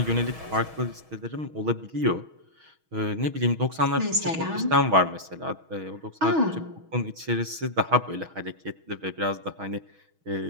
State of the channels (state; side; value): late; left; 6.3 ms